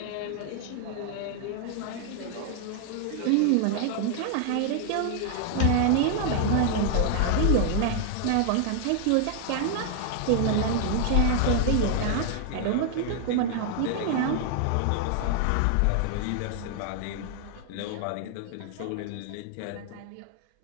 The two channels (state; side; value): different; both; correlation 0.00